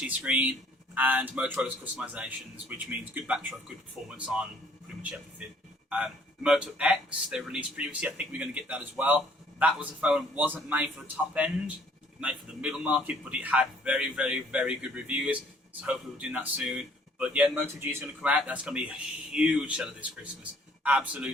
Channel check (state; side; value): normal; both; correlation 0.59